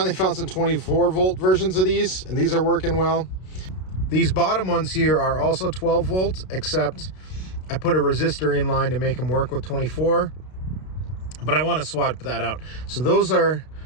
found some 24-volt versions of these, and these are working well. These bottom ones here are also 12 volt, except I put a resistor in line to make them work with 24. But I want to swap that out. So those are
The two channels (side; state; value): right; late; 32 ms